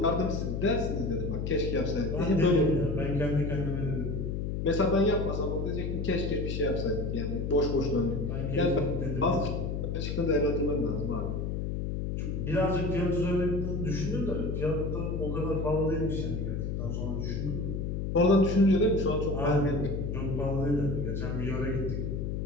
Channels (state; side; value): noise; left; hum, 2 dB below the sound